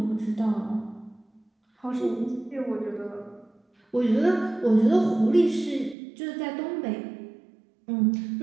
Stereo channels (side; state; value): left; drops out; at 6.0 s